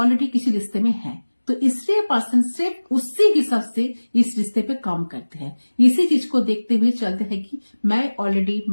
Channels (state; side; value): inverted; both; correlation -1.00